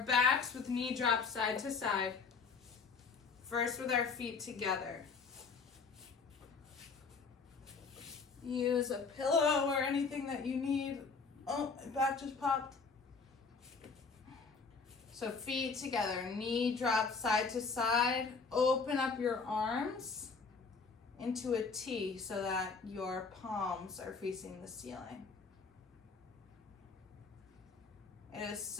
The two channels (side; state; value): right; quieter; 4.9 dB